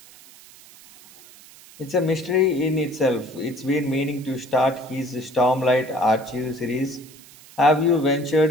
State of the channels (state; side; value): noise; right; hiss, 22 dB below the sound